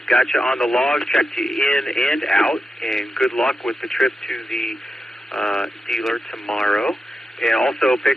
Got you on the log, checked you in and out, and good luck with the trip to the dealer tomorrow. And also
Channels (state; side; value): normal; both; correlation 0.88